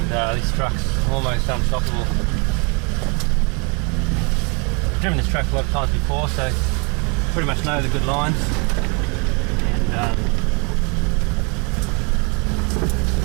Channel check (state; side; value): quieter; left; 33.2 dB